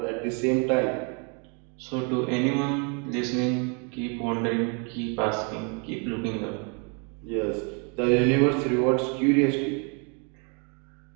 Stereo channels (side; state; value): left; quieter; 36.2 dB